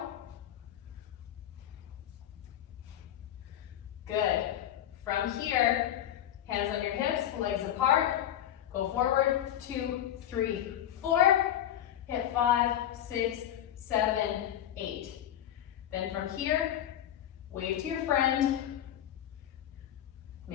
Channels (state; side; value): quieter; right; 11.3 dB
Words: Good. From here, hands on your hips, legs apart. Go forward, 2, 3, 4. Hit 5, 6, 7, 8. Then from here, wave to your friend.